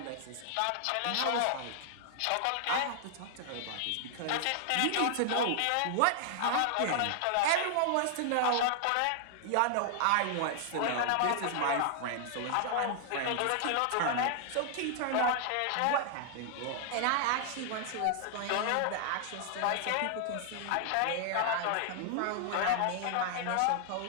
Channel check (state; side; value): different; both; correlation -0.01